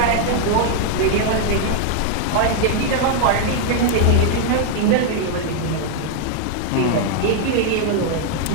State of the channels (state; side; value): different; both; correlation 0.00